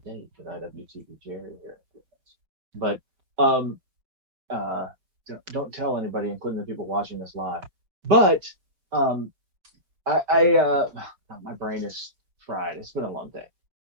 date with IWTV Jerry here. But don't tell anybody, including the people watching this live. But my brain is fried. It's been a long day.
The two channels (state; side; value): late; left; 5.4 ms